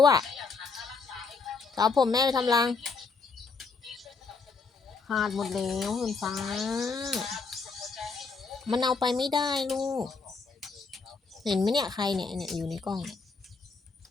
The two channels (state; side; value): quieter; right; 4.6 dB